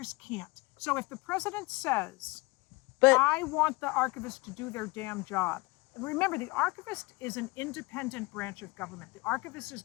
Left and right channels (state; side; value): quieter; right; 23.5 dB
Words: can't. So if the president says, I want the archivist to do their damn job, remember, the archivist is an independent branch of government. The archivist is